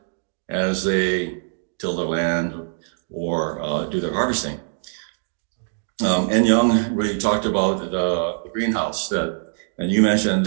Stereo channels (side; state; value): left; silent; digital silence